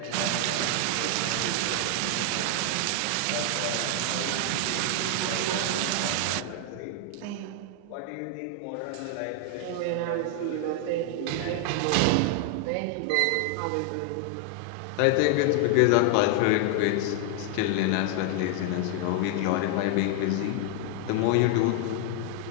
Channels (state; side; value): different; both; correlation 0.00